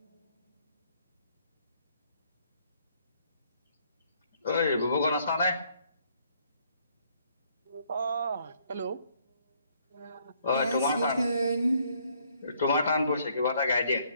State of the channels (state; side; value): inverted; both; correlation -0.67